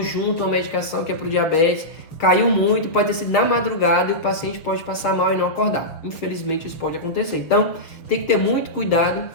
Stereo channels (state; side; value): late; right; 6.5 ms